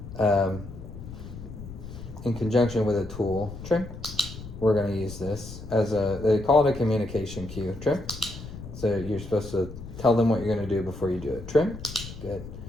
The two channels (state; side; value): noise; left; rumble, 12 dB below the sound